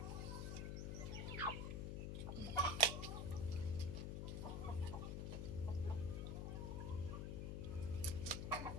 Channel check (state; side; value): noise; left; hum, 2 dB below the sound